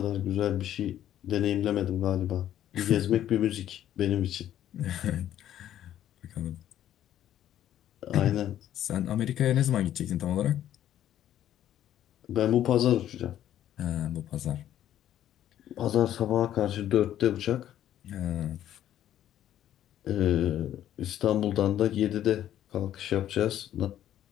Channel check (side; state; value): right; quieter; 11.6 dB